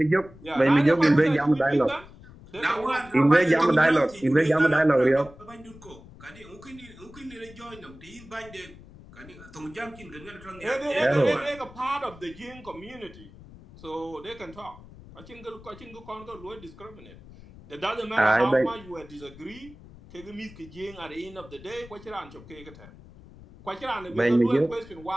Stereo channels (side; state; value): left; noise; rumble, 20 dB below the sound